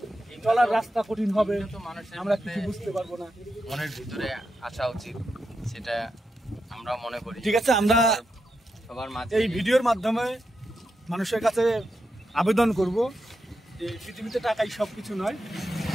চলার রাস্তা কঠিন হবে, আমরা কিছু বুঝতে পারবো না। মনের ভিতরে আসা উচিত, সেটা আমরা মনে করি। ঠিক আছে, আমরা সবার মাঝে এই ভিডিওর মাধ্যমে মানুষের কাছে আবেদন করব যে পৃথিবীতে টাকাই সবকিছু নয়,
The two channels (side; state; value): both; normal; correlation 0.86